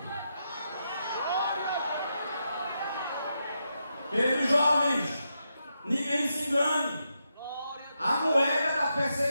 Queridos jovens, ninguém se engane. A moeda da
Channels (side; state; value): both; inverted; correlation -0.84